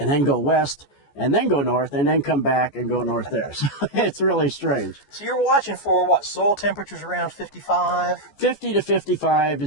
then go west and then go north and then come back and go north there. So it's really strange. So you're watching for what, soil temperatures around 55? 50 to 55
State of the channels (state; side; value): late; right; 14 ms